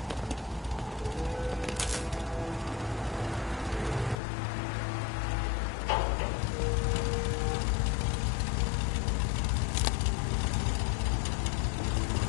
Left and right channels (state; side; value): drops out; right; at 4.2 s